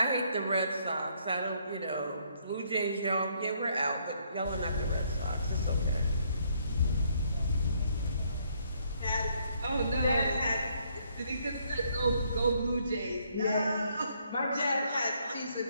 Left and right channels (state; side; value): inverted; both; correlation -0.69